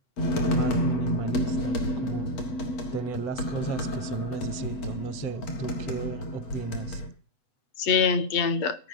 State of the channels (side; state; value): right; late; 8.0 ms